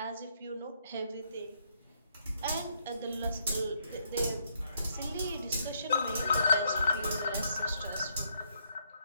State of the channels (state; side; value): inverted; both; correlation -0.73